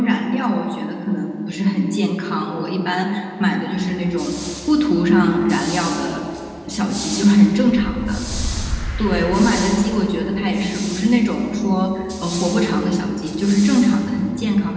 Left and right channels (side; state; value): both; identical; correlation 1.00